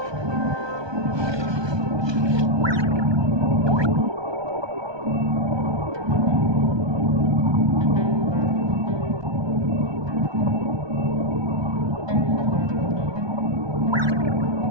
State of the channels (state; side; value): late; left; 1.2 ms